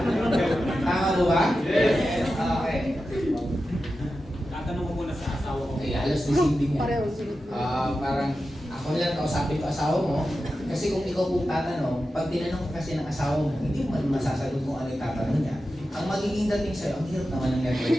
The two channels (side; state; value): both; normal; correlation 0.92